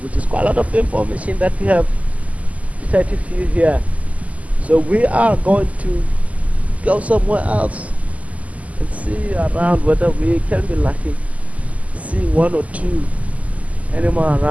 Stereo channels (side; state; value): left; late; 0.072 ms